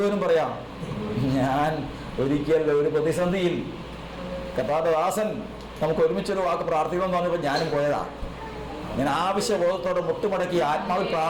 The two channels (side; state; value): both; identical; correlation 1.00